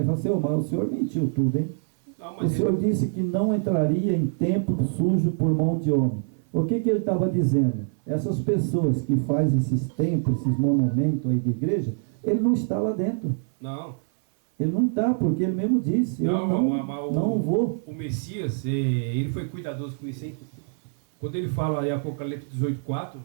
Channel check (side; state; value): left; silent; 62 dB below the other